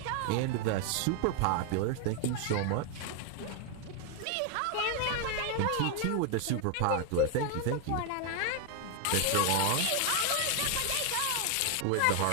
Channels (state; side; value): different; both; correlation 0.01